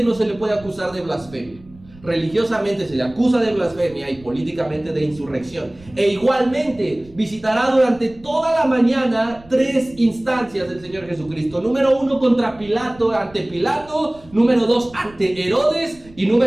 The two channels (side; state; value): right; noise; rumble, 23 dB below the sound